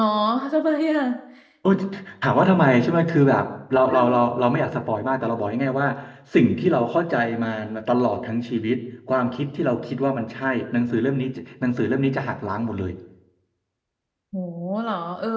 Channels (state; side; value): identical; both; correlation 1.00